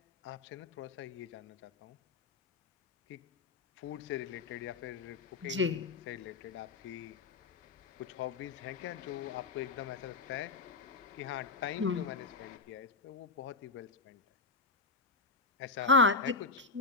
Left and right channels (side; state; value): right; quieter; 4.0 dB